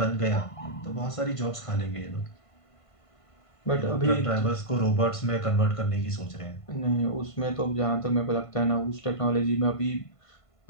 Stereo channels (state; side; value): late; right; 1.5 ms